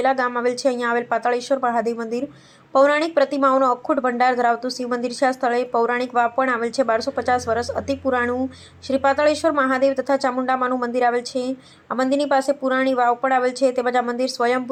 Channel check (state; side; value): identical; both; correlation 1.00